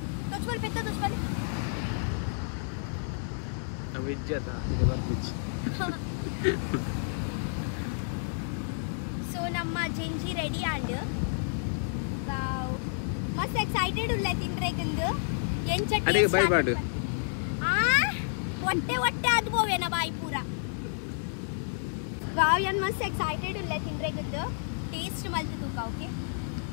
ತೊಚ್ಬಲ್ ಪೆತ್ತ ತೊಚ್ಬಲ್ ವಿಜ್ಜತ ಇದೆ ಬರ್ತಿಚ್ಚಿ ಸೊ ನಮ್ಮ ಜೆಂಜಿ ರೆಡಿ ಆಂಡ್ ವಾವ್ ಮಸ್ತ್ ಎಕ್ಸೈಟೆಡ್ ಉಲ್ಲ ತಿಂದ್ರೆಗಂದು ಅಡೆ ಬೈ ಮಾಡು ಹೊಟ್ಟೆ ಅದು ಬೋವೇನ ಬಾಯಿ ಪೂರ ವಾವ್ ಯನ್ ಮಸ್ತ್ ಎಕ್ಸೈಟೆಡ್ ಉಲ್ಲ ತಿಂದ್ರೆಗಂದು ಟೇಸ್ಟ್ ಮಲ್ತು ತೂಕ ಓಕೆ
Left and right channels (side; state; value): right; silent; digital silence